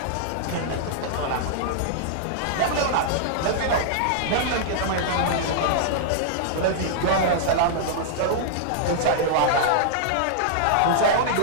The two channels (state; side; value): different; both; correlation -0.01